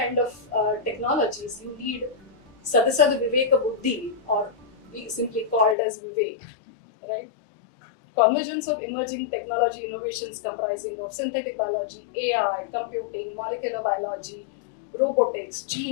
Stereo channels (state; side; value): drops out; right; at 5.8 s